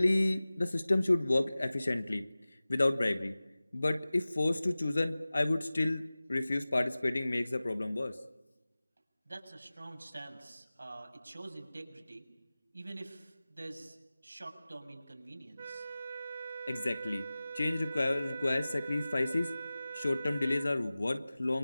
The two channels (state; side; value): inverted; both; correlation -0.97